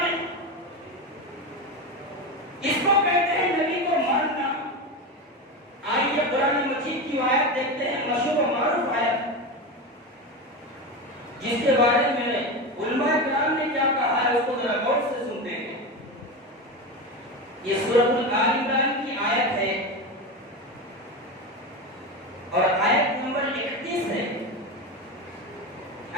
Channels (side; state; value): both; normal; correlation 0.20